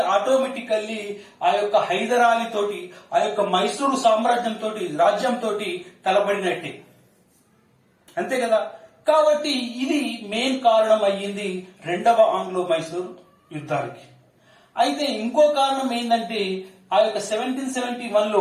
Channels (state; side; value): identical; both; correlation 1.00